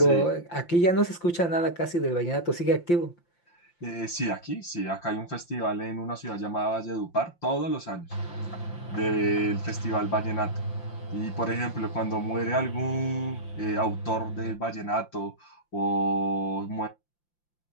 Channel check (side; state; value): right; late; 5.8 ms